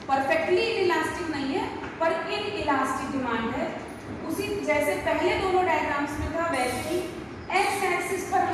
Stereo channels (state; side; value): identical; both; correlation 1.00